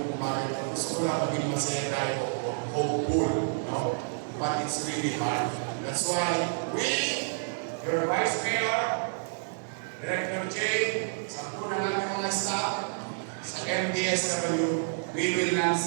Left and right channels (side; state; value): left; silent; 58 dB below the other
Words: kumain. Gusto ko lang maging masaya tayo, hopeful, no? But it's really hard. That's why we, your Vice Mayor, Director Jay, sa po na namin mga staff, sa MDSW, we will not